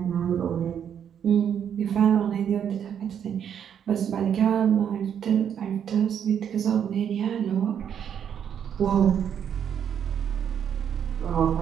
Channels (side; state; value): left; quieter; 8.6 dB